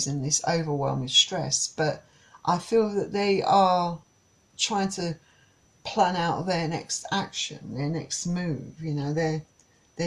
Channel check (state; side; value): identical; both; correlation 1.00